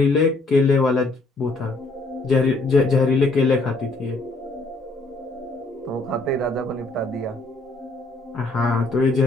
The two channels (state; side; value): quieter; right; 3.1 dB